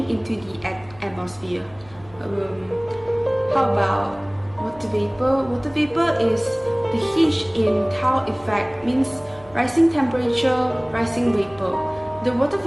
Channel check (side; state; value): left; noise; hum, 24 dB below the sound